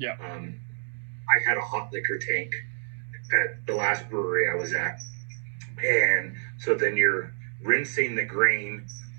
I had a hot liquor tank at the last brewery I was at. And so then you're rinsing the grain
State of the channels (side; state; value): left; silent; 59 dB below the other